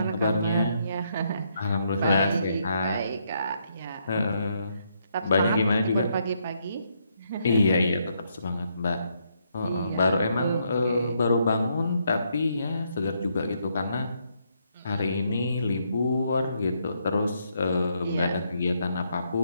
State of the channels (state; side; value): inverted; both; correlation -0.75